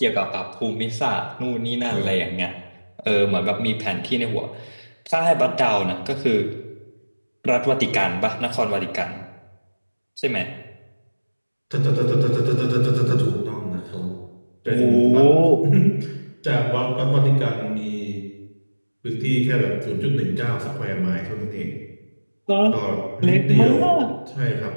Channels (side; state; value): both; inverted; correlation -1.00